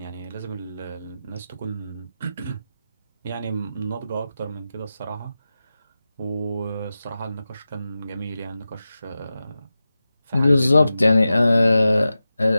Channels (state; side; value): inverted; both; correlation -0.93